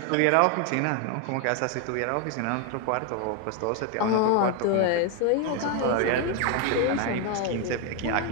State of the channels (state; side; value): different; both; correlation 0.01